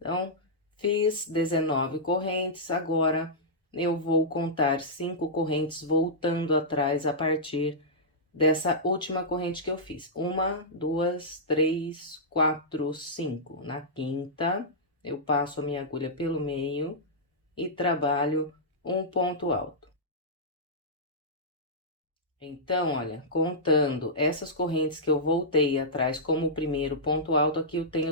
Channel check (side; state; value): both; normal; correlation -0.13